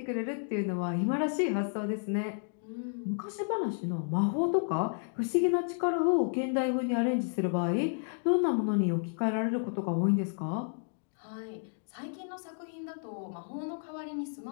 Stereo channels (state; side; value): silent; right; 57 dB below the other